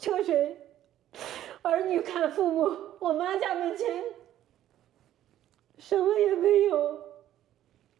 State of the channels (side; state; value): left; quieter; 12.3 dB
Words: 水，儿女看父母，我妈家门前什么也没有。